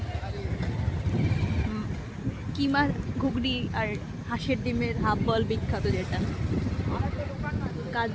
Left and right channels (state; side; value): identical; both; correlation 1.00